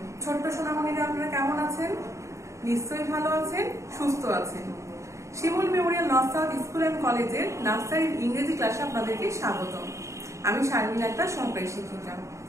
ছোট্ট সোনামণিরা আপনারা কেমন আছেন? নিশ্চয়ই ভালো আছেন, সুস্থ আছেন। Shimul memorial north south school and কলেজের নার্সারির ইংরেজি ক্লাসে আপনাদেরকে স্বাগত। আমি শারমিন আক্তার, সহকারী শিক্ষিকা।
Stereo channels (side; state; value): left; late; 0.14 ms